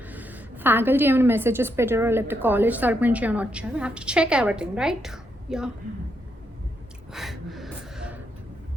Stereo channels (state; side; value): normal; both; correlation 0.79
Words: ఫ్యాకల్టీ ఏమైనా మెసేజెస్ పెట్టారో లేకపోతే కాలేజ్ తరపు నుంచి ఏమైనా వచ్చారో have to check everything, right? Yeah.